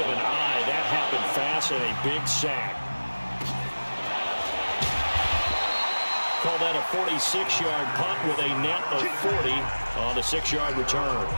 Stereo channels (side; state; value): both; inverted; correlation -1.00